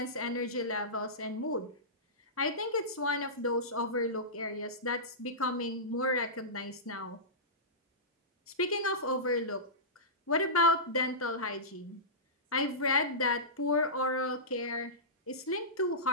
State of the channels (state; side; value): normal; both; correlation -0.18